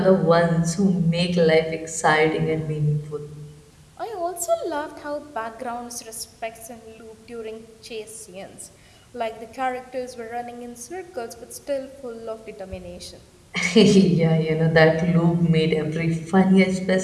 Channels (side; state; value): both; identical; correlation 1.00